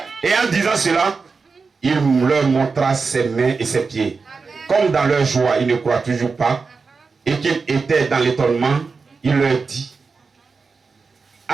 Et en disant cela, il leur montra ses mains et ses pieds. Comme dans leur joie, ils ne croient toujours pas, et qu'ils étaient dans l'étonnement, il leur dit,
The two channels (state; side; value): quieter; left; 4.7 dB